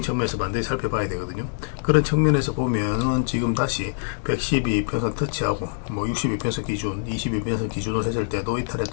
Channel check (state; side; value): silent; right; digital silence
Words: 측면에서 반드시 살펴봐야 되거든요. 그런 측면에서 보면은 지금 다시 112평선 터치하고 뭐 62평선 기준, 22평선 기준으로 했을 때도 이탈에